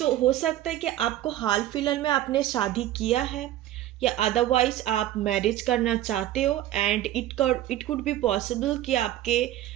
हो सकता है कि आपको हाल फिलहाल में आपने शादी किया है, या अदरवाइज आप मैरिज करना चाहते हो, and it could be possible कि आपके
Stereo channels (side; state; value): left; quieter; 13.5 dB